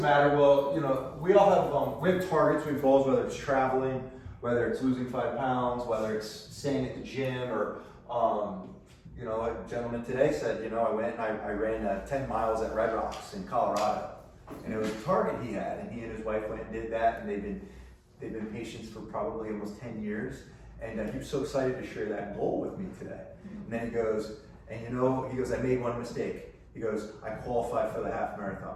matter? Well, you know, we all have we have targets, we have goals, whether it's traveling, whether it's losing 5 pounds, whether it's staying at the gym, or you know, a gentleman today said, you know, I went and I ran 10 miles at Red Rocks in Colorado. And it was a target he had, and he and his wife went and did that, and they've been patients for probably almost 10 years. And he was so excited to share that goal with me today. And then he goes, and you know, he goes, I made one mistake. He goes, I qualified for the half marathon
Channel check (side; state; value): both; identical; correlation 1.00